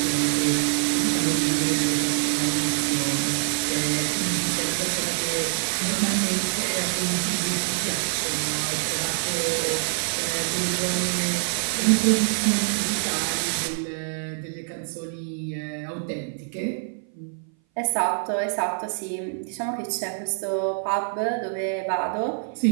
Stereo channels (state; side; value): silent; left; 58 dB below the other